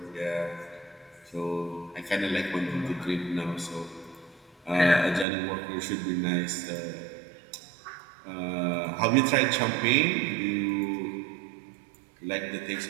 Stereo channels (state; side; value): drops out; left; at 5.2 s